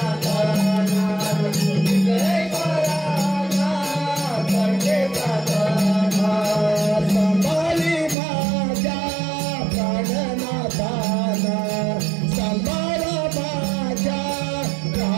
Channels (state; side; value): drops out; left; at 8.2 s